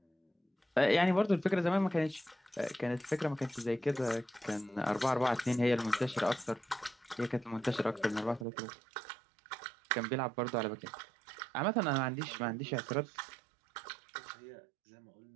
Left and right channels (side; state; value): left; drops out; at 8.5 s